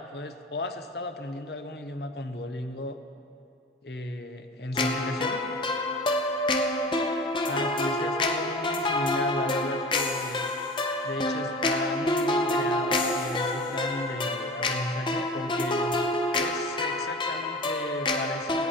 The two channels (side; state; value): both; normal; correlation 0.35